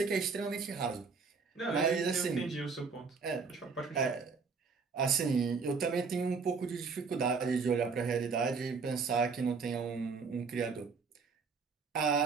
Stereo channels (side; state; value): left; quieter; 5.0 dB